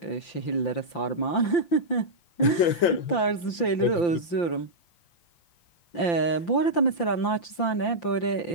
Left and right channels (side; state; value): right; late; 5.8 ms